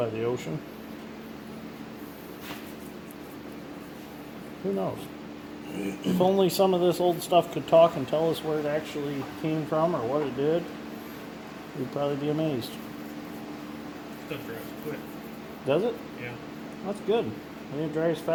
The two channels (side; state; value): both; identical; correlation 1.00